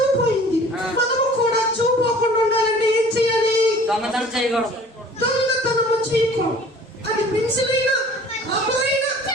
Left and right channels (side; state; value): both; normal; correlation 0.48